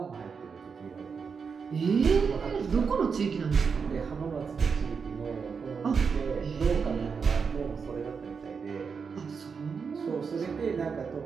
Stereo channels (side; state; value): left; quieter; 5.7 dB